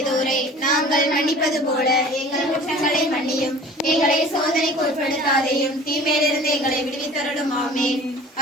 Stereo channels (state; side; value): normal; both; correlation 0.44